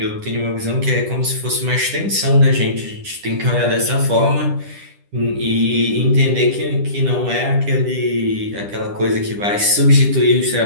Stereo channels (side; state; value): left; late; 10 ms